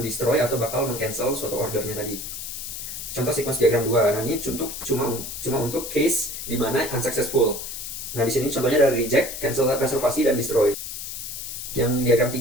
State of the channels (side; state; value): left; noise; hiss, 7 dB below the sound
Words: atau bakal mengcancel suatu ordernya tadi. Contoh sequence diagram 2. Nah, ini cuma untuk case di mana unsuccessful. Nah, di sini contohnya ada reject, cancel reservasi, dan destroy. Yang diagram